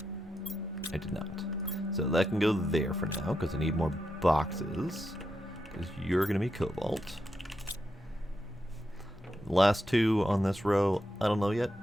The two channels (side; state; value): both; normal; correlation 0.85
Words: I did not. So that can go there for now, because I need more boxes. Because you're gonna be cobalt. The last two on this row, I don't know yet.